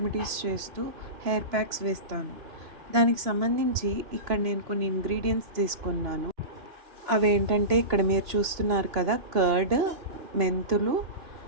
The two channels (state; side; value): late; left; 2.9 ms